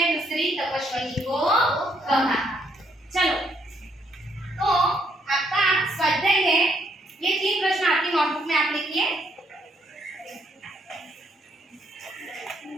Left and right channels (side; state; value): both; normal; correlation 0.72